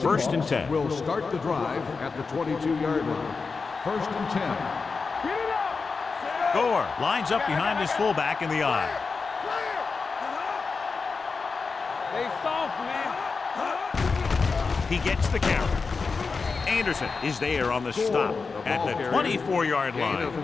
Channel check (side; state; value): right; quieter; 4.6 dB